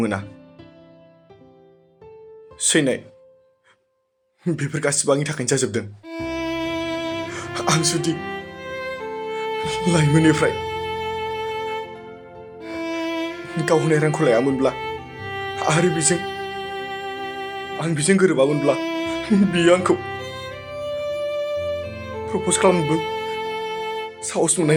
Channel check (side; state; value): both; identical; correlation 1.00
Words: मोना सैनाय बेफोर गासिबो आंनि थाखायनो जाजोबदों आं जुदि लाइमोननिफ्राय गाव होनाय रांखौ लायामोनब्ला आरो आं बेजों गोरोबामोनब्ला बियो आंखौ प्रप'ज खालामनोबो साहस मोननाय